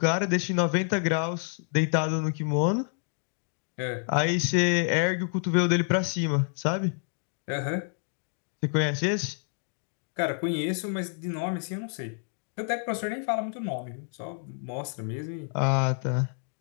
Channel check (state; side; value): silent; right; 59 dB below the other